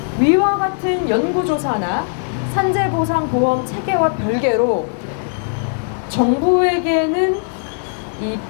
위와 같은 연구조사나 산재보상보험 체계와 별개로 정부에게는 이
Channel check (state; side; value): silent; right; digital silence